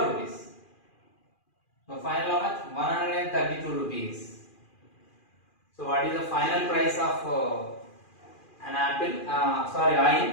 rupees. So final how much? 132 rupees. So what is the final price of an apple,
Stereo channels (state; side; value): late; right; 2.4 ms